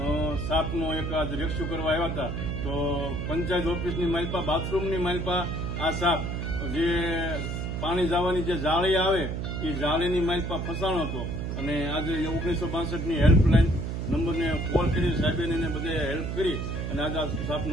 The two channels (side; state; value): right; noise; hum, 3 dB below the sound